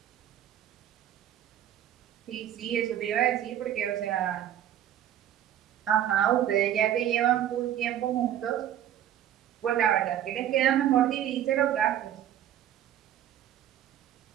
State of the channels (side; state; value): left; quieter; 11.0 dB